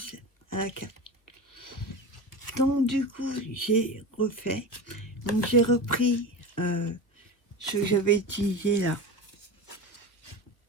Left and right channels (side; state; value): right; late; 1.3 ms